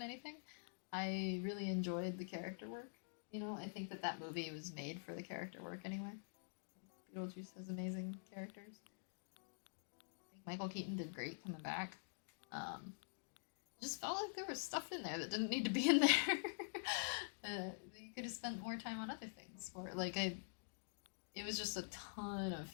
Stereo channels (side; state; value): right; silent; digital silence